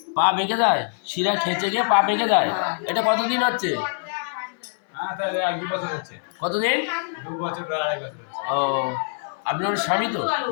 পা বেঁকে যায়, শিরা খেঁচে গিয়ে পা বেঁকে যায়। এটা কতদিন হচ্ছে? কতদিন? 2 বছর, 2.5 বছর। ও, আপনার স্বামী তো?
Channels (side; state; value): right; silent; 60 dB below the other